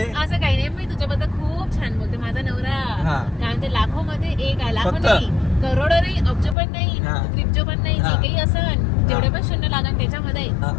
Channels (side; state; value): right; drops out; at 6.6 s